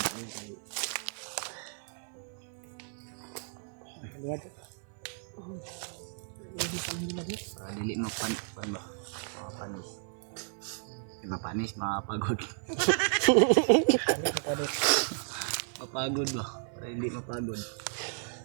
tayo kay Lihat. Hindi pa nila din. para dili mapanis. Mapanis, mapagod. Ano pa din. Mapagod ba? Para hindi mapagod.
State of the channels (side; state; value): left; silent; 56 dB below the other